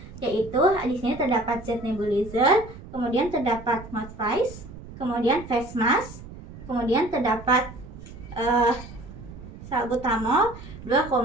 yaitu di sini terdapat zat nebulizer, kemudian terdapat mouth face, kemudian face mask, kemudian terdapat salbutamol 2,5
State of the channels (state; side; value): noise; right; rumble, 15 dB below the sound